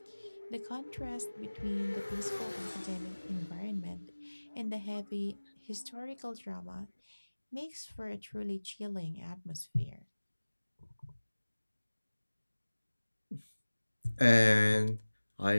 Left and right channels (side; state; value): both; inverted; correlation -1.00